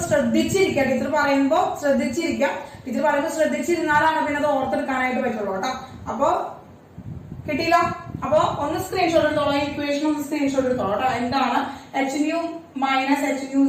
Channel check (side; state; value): both; identical; correlation 1.00